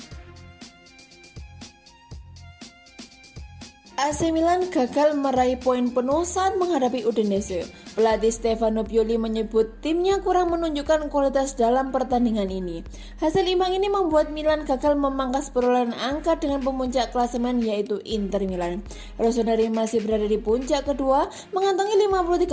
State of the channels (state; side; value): identical; both; correlation 1.00